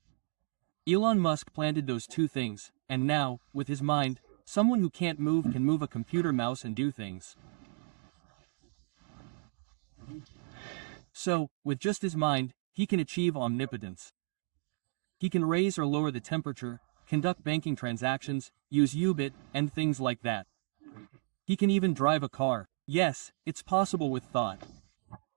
Elon Musk planted those two things, and now, with his mind, someone who can't move can move a computer mouse and do things. So, with just his mind, he can achieve omnipotence. He can raise or lower the temperature, conduct banking transactions, use U-bit, and things like that. He can even drive a car. Yes, it's possible with thought.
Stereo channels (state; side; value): quieter; left; 30.2 dB